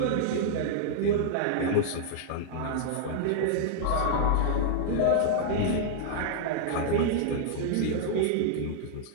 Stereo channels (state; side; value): different; both; correlation -0.01